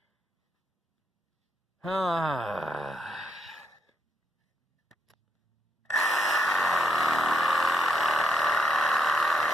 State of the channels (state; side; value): normal; both; correlation 0.78